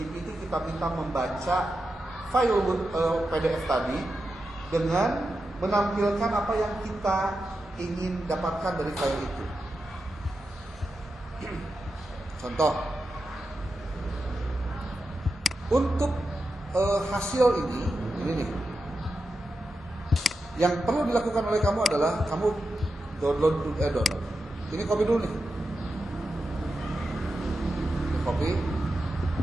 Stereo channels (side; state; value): both; normal; correlation 0.89